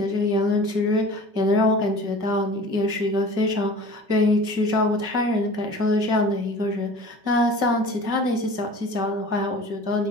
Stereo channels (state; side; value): late; left; 5.3 ms